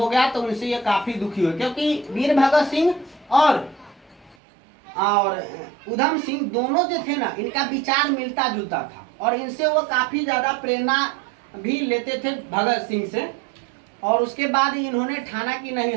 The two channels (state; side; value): drops out; left; at 4.4 s